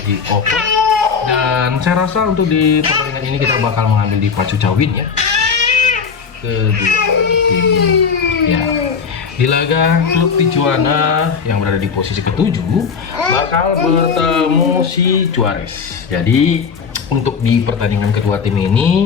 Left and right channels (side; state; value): right; quieter; 5.9 dB